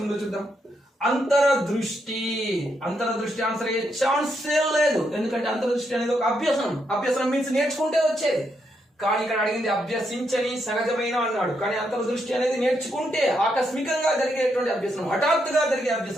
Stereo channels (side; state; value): both; normal; correlation 0.79